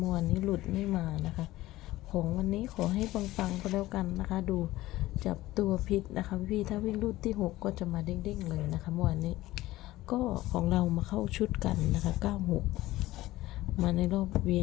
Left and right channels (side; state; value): right; quieter; 16.9 dB